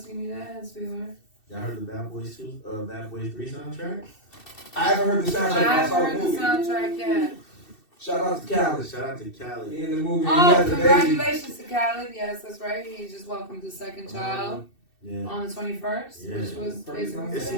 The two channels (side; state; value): right; late; 2.6 ms